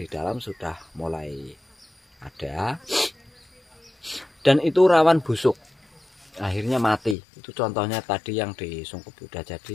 dalam sudah mulai ada, dan itu rawan busuk, akhirnya mati. Itu contohnya tadi yang di sungkup udah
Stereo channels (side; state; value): right; drops out; at 7.2 s